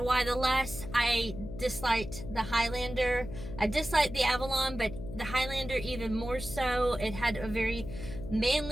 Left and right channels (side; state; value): left; noise; hum, 10 dB below the sound